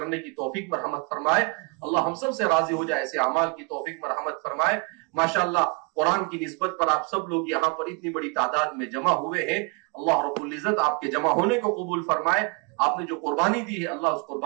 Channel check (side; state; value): left; quieter; 31.5 dB